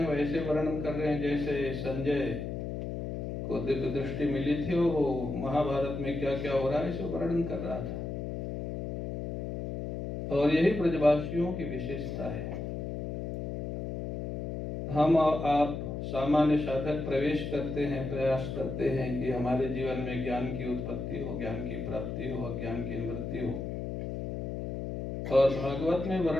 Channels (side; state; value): left; noise; hum, 4 dB below the sound